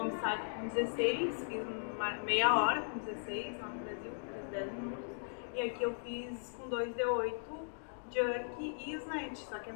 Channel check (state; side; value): silent; right; digital silence